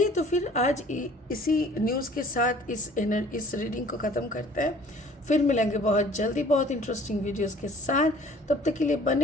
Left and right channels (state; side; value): normal; both; correlation 0.52